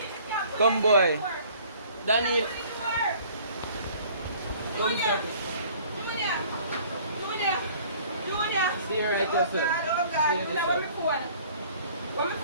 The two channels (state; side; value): inverted; both; correlation -0.53